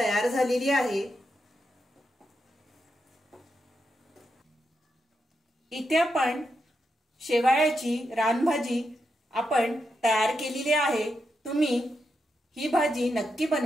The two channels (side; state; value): both; normal; correlation 0.85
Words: झालेली आहे। इथे आपण शेवाळ्याची रानभाजी आपण तयार केलेली आहे। तुम्ही ही भाजी नक्की